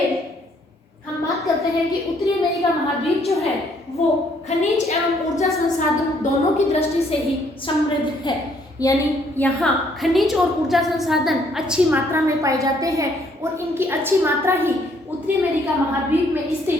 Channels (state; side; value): normal; both; correlation 0.66